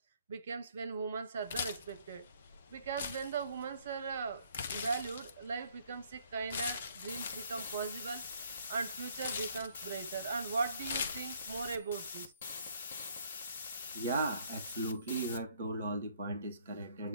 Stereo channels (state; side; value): inverted; both; correlation -0.64